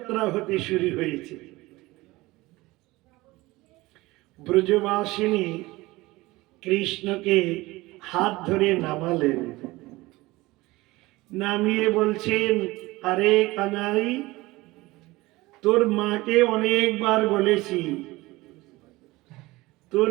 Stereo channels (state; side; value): quieter; left; 20.3 dB